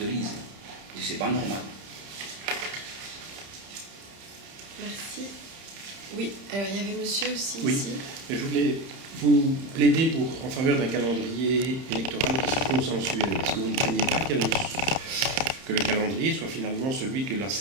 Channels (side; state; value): left; late; 30 ms